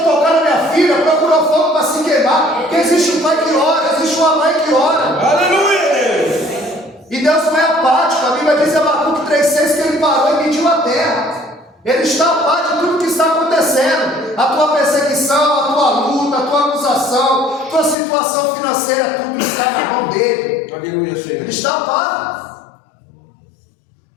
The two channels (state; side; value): drops out; right; at 17.9 s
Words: tocar na minha filha procurou fogo para se queimar. Porque existe um pai que ora, existe uma mãe que ora. Aleluia, Deus! E Deus não é apático. A Bíblia diz em Abacuque 3,6 que ele parou e mediu a terra. Ele está a par de tudo que está acontecendo. A tua perseguição, a tua luta, a tua acusação, a tua situação financeira, tudo está na mão dele. Aleluia, Senhor. Ele está a par.